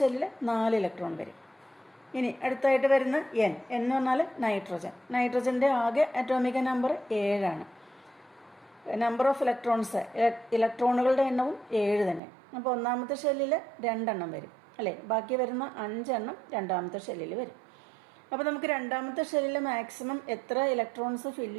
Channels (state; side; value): drops out; left; at 12.2 s